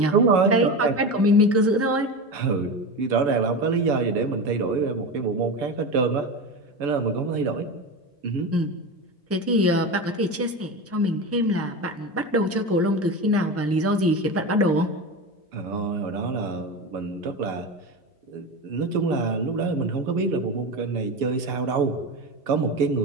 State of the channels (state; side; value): normal; both; correlation 0.22